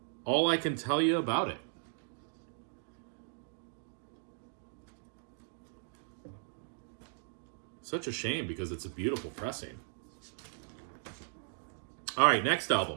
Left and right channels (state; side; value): silent; left; digital silence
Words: all I can tell you about it. Such a shame because it's a beautiful pressing. All right, next